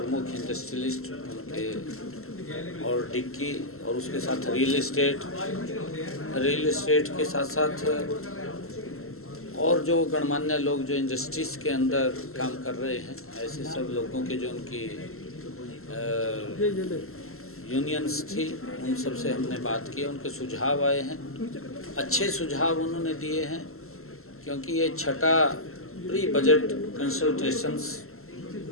इंडस्ट्रियलिस्ट, उनके और डिक्की और उसके साथ रियल एस्टेट के साथ साथ और जो गणमान्य लोग जो इंडस्ट्रीज़ के अंदर काम कर रहे हैं, ऐसे सब लोगों के जो उनकी यूनियंस थी, उन सब से हमने बात की। उनके सुझाव आए हैं, अच्छे सुझाव उन्होंने दिए हैं, क्योंकि ये छठा प्री बजट कंसल्टेशंस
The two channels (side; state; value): right; late; 0.62 ms